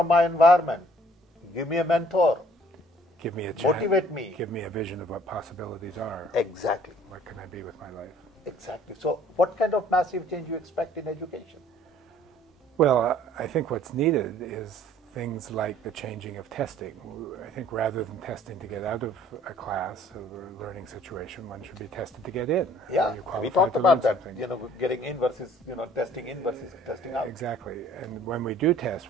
my environment. Give me a mentor. Give me a chance. Motivate me. Give me a vision of what possibilities are. Exactly. What can I be with my life? Exactly. So what kind of massive change you expect in education? Well, I think what's needed is things like the changing of testing. I think rather than testing to get out of a class or a learning situation, one should be tested to get in. Yeah, we talked about that, you know, getting in versus, you know, testing in versus testing out. Exactly. And when we do test,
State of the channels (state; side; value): normal; both; correlation 0.57